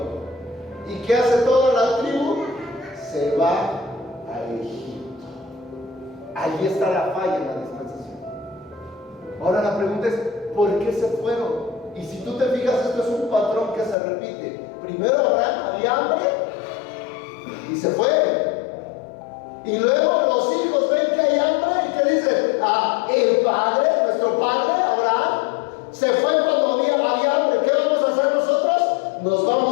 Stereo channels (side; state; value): right; drops out; at 14.0 s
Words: ¿Y qué hace toda la tribu? Se va a Egipto. Allí está la falla en la dispensación. Ahora la pregunta es, ¿por qué se fueron? Y si tú te fijas, esto es un patrón que se repite. Primero Abraham había hambre y se fue. Y luego los hijos ven que hay hambre y que dicen, el padre, nuestro padre Abraham, se fue cuando había hambre. ¿Qué vamos a hacer nosotros? Nos